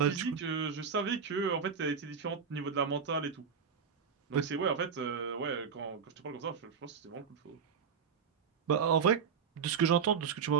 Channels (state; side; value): quieter; left; 6.4 dB